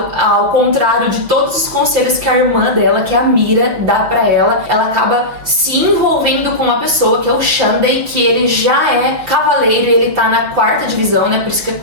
ao contrário de todos os conselhos que a irmã dela, que é a Mira, dá pra ela acaba se envolvendo com uma pessoa que é o Shandei, que ele já é cavaleiro e ele tá na 4ª divisão, né? Por isso que é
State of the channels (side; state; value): left; late; 5.9 ms